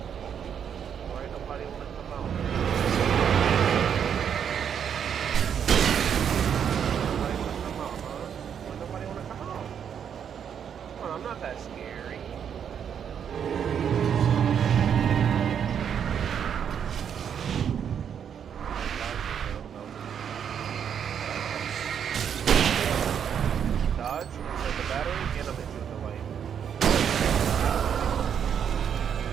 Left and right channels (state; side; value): quieter; left; 8.1 dB